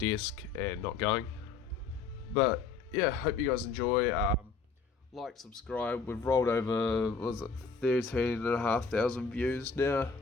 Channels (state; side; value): quieter; right; 4.9 dB